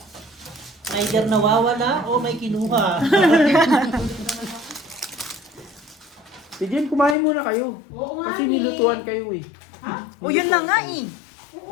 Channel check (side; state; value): right; drops out; at 7.2 s